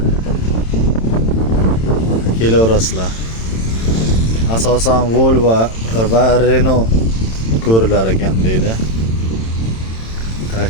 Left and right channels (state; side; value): late; right; 27 ms